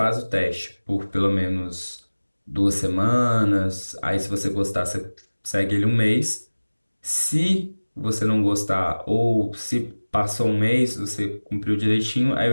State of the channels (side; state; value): both; inverted; correlation -1.00